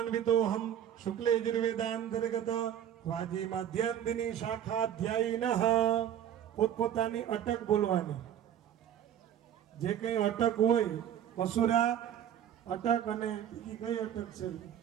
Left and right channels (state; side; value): quieter; left; 10.1 dB